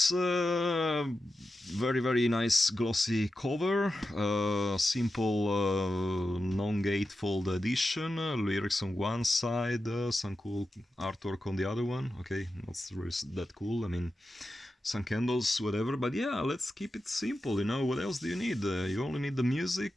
Very nice glossy cover, simple non-gatefold edition, lyrics on one side, some cool artwork on the other one. Okay, not really that cool, I mean, some candles, whatever, but yeah, let's keep it simple, you know. What else do you need? You only need the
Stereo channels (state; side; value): normal; both; correlation 0.91